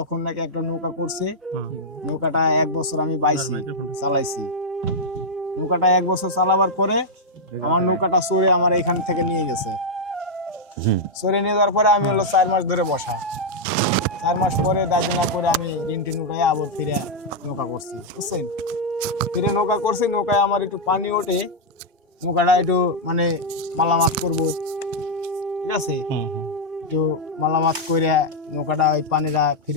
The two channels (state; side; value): normal; both; correlation -0.03